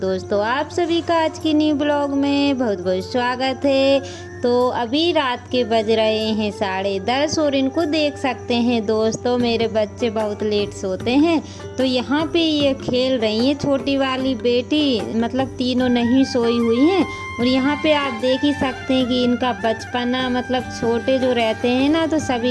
आप सभी का आज की न्यू ब्लॉग में बहुत बहुत स्वागत है। तो अभी रात के बज रहे हैं 10:30 और इनको देख सकते हैं दोस्तों, मेरे बच्चे बहुत लेट सोते हैं। तो यहाँ पे ये खेल रही है, छोटी वाली बेटी, मतलब तीनों नहीं सोई हुई हैं। और यहाँ पे आप देख ही सकते हैं कि इनका बचपना, मतलब छोटे जो रहते हैं ना, तो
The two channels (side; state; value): both; identical; correlation 1.00